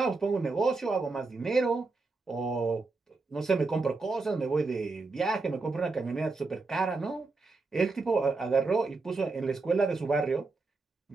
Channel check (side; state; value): left; quieter; 3.8 dB